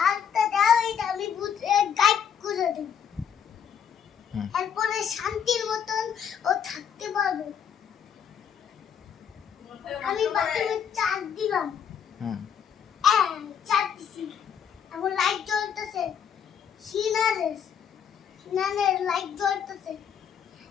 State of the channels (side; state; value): right; quieter; 8.0 dB